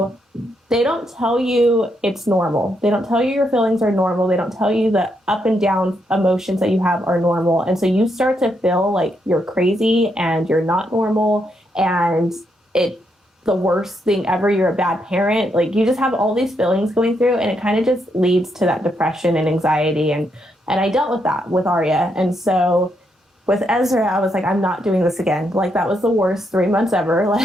they don't tell you it's normal. They don't tell you your feelings are normal. They don't tell you the up and down emotions that you have are normal. And so you start to feel like you're crazy and you're not normal and it the worst thing ever. You're a bad parent. Like you just have all these feelings going through and it kind of just leads to that depression and anxiety. And I dealt with that with Arya. And so with Ezra, I was like, I'm not doing this again. Like that was the worst 3 months ever.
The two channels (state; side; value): normal; both; correlation 0.78